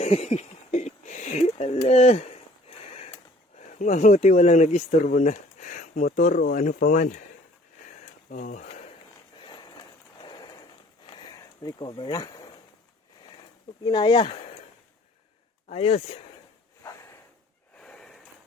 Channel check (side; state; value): both; normal; correlation 0.54